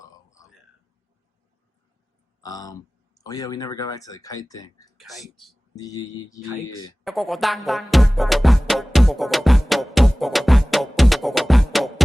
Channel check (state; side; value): normal; both; correlation 0.98